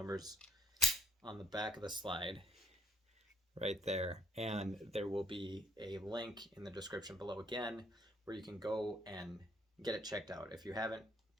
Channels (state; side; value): normal; both; correlation 0.67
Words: on the back of the slide right there. And there will be a link in the description below again where you can go and get it checked out. If you haven't,